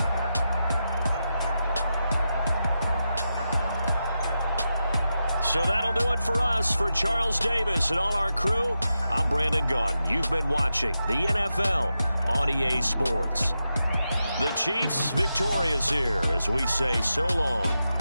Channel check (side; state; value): both; inverted; correlation -0.88